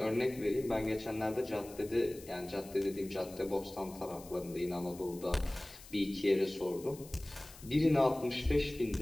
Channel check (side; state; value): left; noise; hiss, 19 dB below the sound